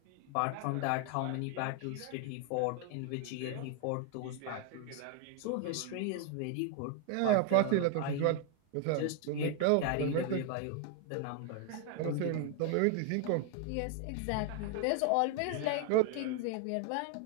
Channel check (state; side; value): different; both; correlation 0.00